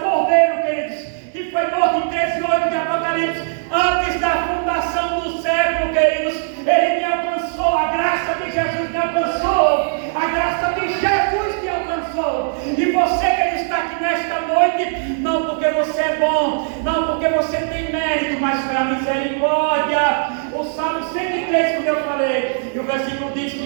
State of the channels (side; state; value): left; silent; digital silence